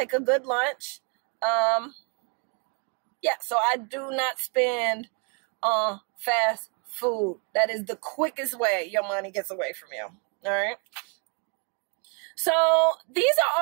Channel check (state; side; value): quieter; left; 36.5 dB